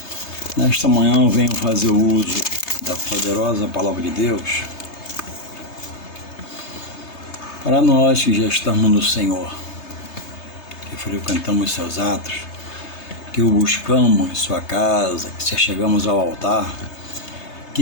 Nesta manhã eu venho fazer uso da poderosa Palavra de Deus para nós que já estamos no Senhor, que frequentamos seus atos, que o buscamos em sua casa, que chegamos ao altar,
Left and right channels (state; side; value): late; right; 3.3 ms